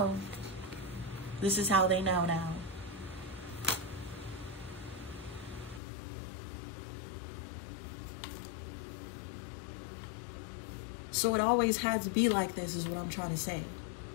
This is how they know now. So it always had to be like this, is what I'm trying to say.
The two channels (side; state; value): right; drops out; at 5.8 s